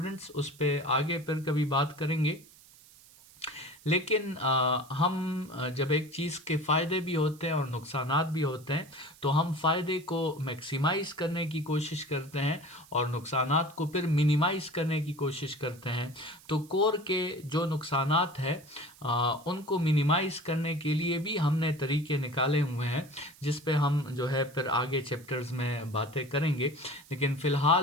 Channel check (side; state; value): right; noise; hiss, 24 dB below the sound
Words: उस पर आगे फिर कभी बात करेंगे। लेकिन हम जब एक चीज़ के फ़ायदे भी होते हैं और नुकसानात भी होते हैं तो हम फ़ायदे को मैक्सिमाइज़ करने की कोशिश करते हैं और नुकसानात को फिर मिनिमाइज़ करने की कोशिश करते हैं। तो कोर के जो नुकसानात हैं उनको मिनिमाइज़ करने के लिए भी हमने तरीके निकाले हुए हैं जिस पे हम जो है फिर आगे चैप्टर्स में बातें करेंगे। लेकिन